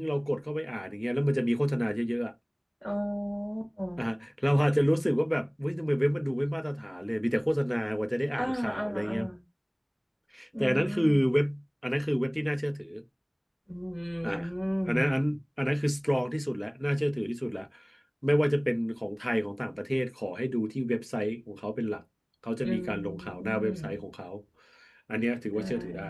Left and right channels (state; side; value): identical; both; correlation 1.00